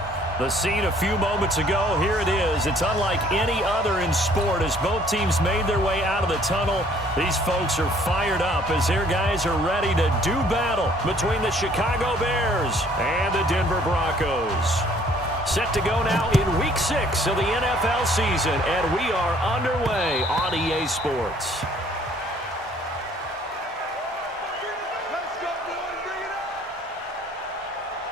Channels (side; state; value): both; normal; correlation 0.59